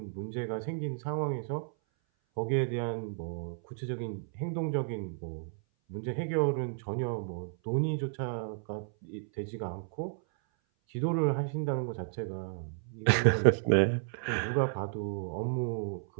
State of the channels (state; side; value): silent; left; 56 dB below the other